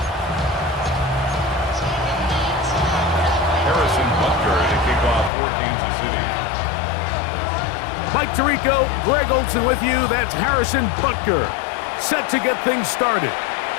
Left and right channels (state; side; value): drops out; right; at 5.3 s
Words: Mike Tirico, Greg Olson with you. That's Harrison Butker, set to get things started.